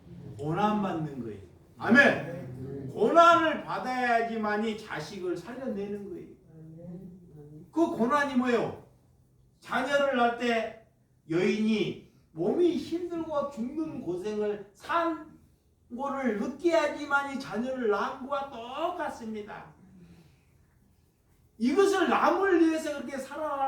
고난 받는 거예요. 아멘. 고난을 받아야지만이 자식을 살려내는 거예요. 그 고난이 뭐예요? 자녀를 낳을 때 여인이 몸이 힘들고 죽는 고생을 산 거를 느껴야지만이 자녀를 낳은 거와 똑같습니다. 이것을 남을 위해서 그렇게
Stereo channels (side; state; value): both; identical; correlation 1.00